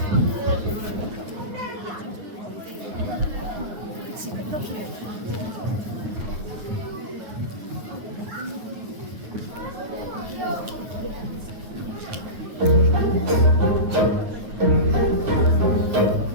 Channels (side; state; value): left; late; 9.4 ms